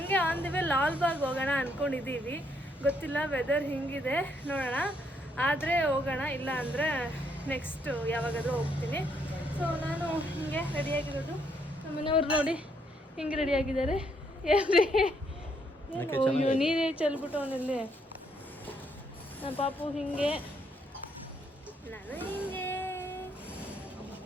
ಆನ್ ದಿ ವೇ ಲಾಲ್ಬಾಗ್ ಹೋಗೋಣ ಅಂದ್ಕೊಂಡಿದ್ದೀವಿ. ಗೊತ್ತಿಲ್ಲ ವೆದರ್ ಹಿಂಗಿದೆ, ನೋಡೋಣ. ಆದರೆ ಹೋಗೋಣ, ಇಲ್ಲ ಅಂದರೆ ನೆಕ್ಸ್ಟ್ ಯಾವಾಗಾದರೂ ಹೋಗ್ತೀನಿ. ಸೊ ನಾನು ಹಿಂಗೆ ರೆಡಿಯಾಗಿರೋದು. ನಮ್ಮ ಮನೆಯವ್ರು ನೋಡಿ ಹಿಂಗೆ ರೆಡಿಯಾಗಿದ್ದಾರೆ. ಏನ್ರಿ ನೀರೇ ಚೆಲ್ಬಿಟ್ಟು ಅವನಲ್ಲಿ. ನಮ್ಮ ಪಾಪು ಹಿಂಗೆ, ನಾನು ಹಿಂಗೆ.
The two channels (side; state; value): both; normal; correlation 0.72